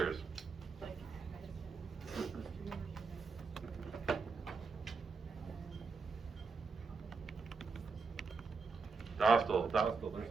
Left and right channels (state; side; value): quieter; left; 4.7 dB